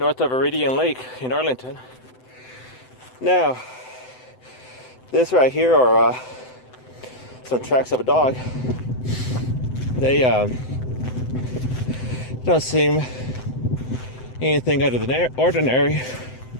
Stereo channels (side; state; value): right; late; 7.9 ms